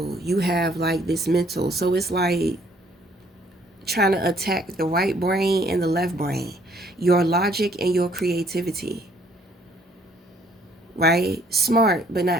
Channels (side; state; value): both; normal; correlation 0.63